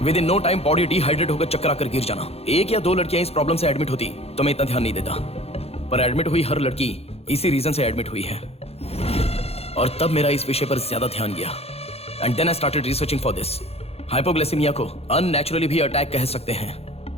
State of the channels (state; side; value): late; right; 0.29 ms